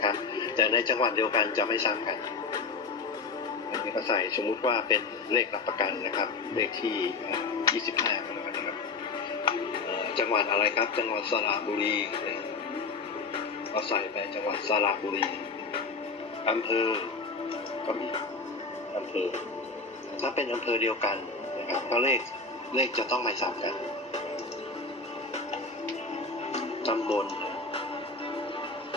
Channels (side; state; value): right; quieter; 4.2 dB